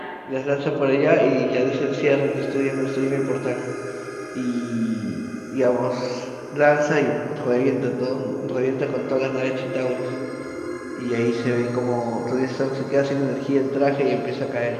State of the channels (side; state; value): both; identical; correlation 1.00